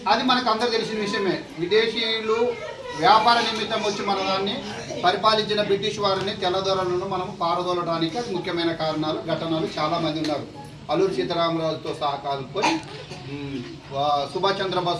అది మనకు అందరూ తెలిసిన విషయమే. విదేశీయులు వ్యాపార నిమిత్తం వచ్చి మన దాన్ని పరిపాలించిన బ్రిటిష్ వారిని తెల్లదొరలను మనం పారదోలడానికి అది ముఖ్యమైన కారణాలు ఘటనలు చాలామంది ఉన్నారు. అల్లూరి సీతారామరాజుతో సహా కలుపుకొని సుభాష్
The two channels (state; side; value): identical; both; correlation 1.00